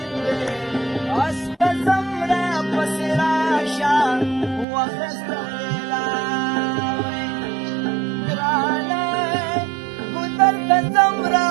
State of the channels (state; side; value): drops out; left; at 4.7 s